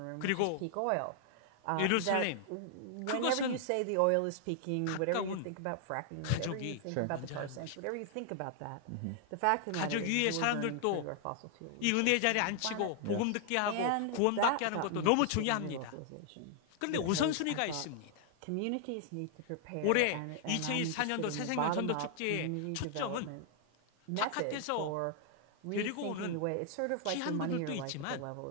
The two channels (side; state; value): both; different; correlation 0.00